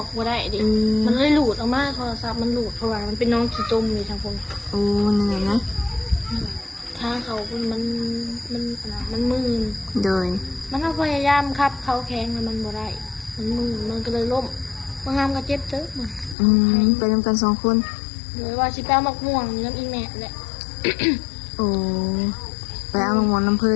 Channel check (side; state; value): right; drops out; at 16.4 s